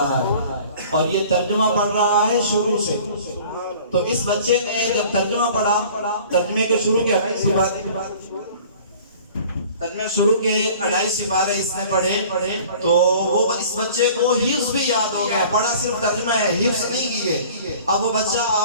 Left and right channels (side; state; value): both; inverted; correlation -0.47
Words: ہے، اور یہ ترجمہ پڑھ رہا ہے شروع سے۔ تو اس بچے نے جب ترجمہ پڑھا، ترجمے کو شروع کیا، ترجمے شروع کے 2.5 سپارے اس نے پڑھے، تو وہ اس بچے کو حفظ بھی یاد ہو گیا۔ پڑھا صرف ترجمہ ہے، حفظ نہیں کیے۔ اب وہ بچہ